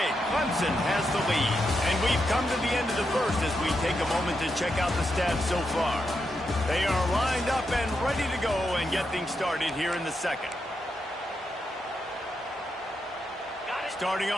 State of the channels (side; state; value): both; normal; correlation 0.84